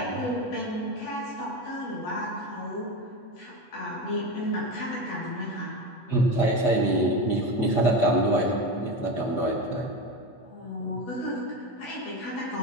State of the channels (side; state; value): right; late; 8.2 ms